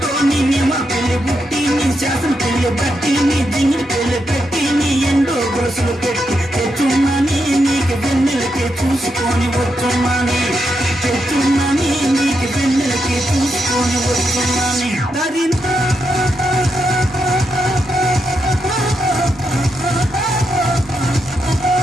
నిన్నే మా పెళ్లి బుట్టి నీ చేసిన పిల్లి బట్టి నీ జింగిడి పెళ్లి పెట్టి నీ ఎండో గొలుసులు పెట్టి తెచ్చున్నానే నీకు వెన్నెలకి చూసుకొని వచ్చున్నానే తెచ్చున్నానే నీకు వెన్నెలకి చూసుకొని వచ్చున్నానే దరినా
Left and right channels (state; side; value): normal; both; correlation 0.83